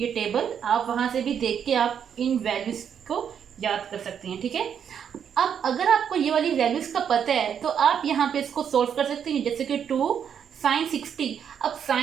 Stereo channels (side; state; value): left; quieter; 8.1 dB